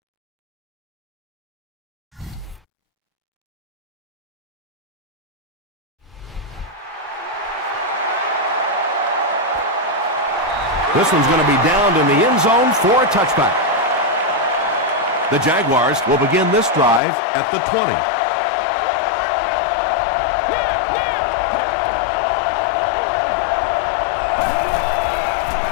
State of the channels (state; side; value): drops out; right; at 17.0 s